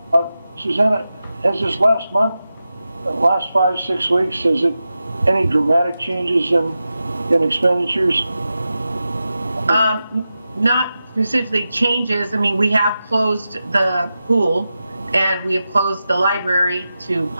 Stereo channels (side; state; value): both; inverted; correlation -0.92